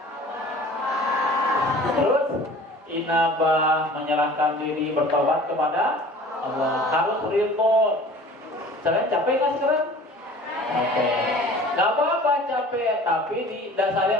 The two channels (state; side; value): normal; both; correlation 0.45